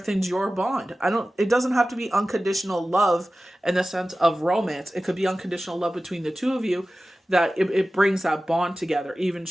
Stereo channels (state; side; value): normal; both; correlation 0.95